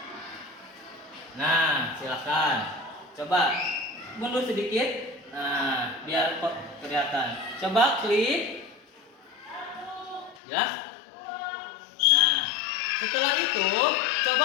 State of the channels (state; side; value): drops out; right; at 10.4 s